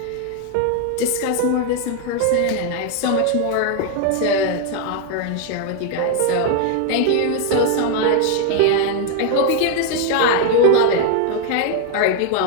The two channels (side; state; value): both; different; correlation 0.00